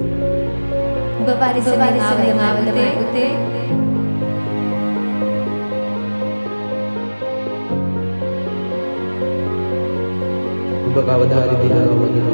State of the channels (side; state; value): both; inverted; correlation -1.00